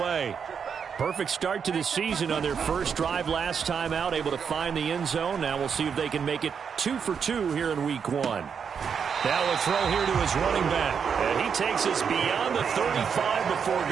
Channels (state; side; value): quieter; left; 6.7 dB